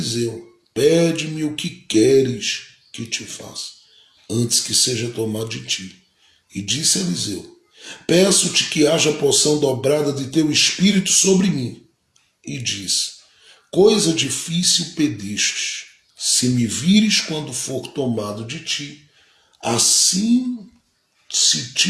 pede-me o que queres que te faça, antes que seja tomado de ti. E disse Eliseu, peço-te que haja porção dobrada de teu espírito sobre mim. E disse, coisa difícil pedistes, se me vires quando for tomado de ti, assim se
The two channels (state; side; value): identical; both; correlation 1.00